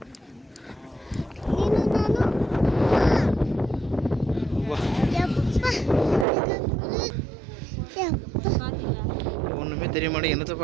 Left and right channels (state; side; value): drops out; left; at 6.2 s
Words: ஒன்றுமே தெரிய மாட்டேன், என்னத்தை